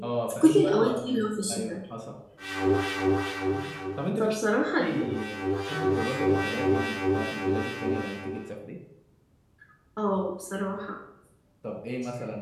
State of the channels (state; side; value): identical; both; correlation 1.00